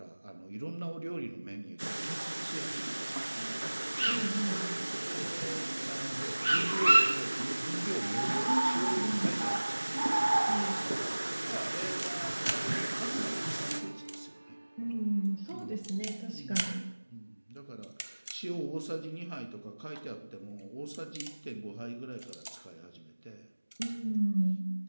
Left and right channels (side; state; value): both; inverted; correlation -1.00